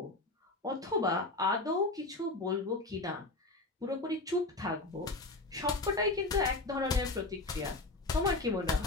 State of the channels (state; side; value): quieter; right; 3.1 dB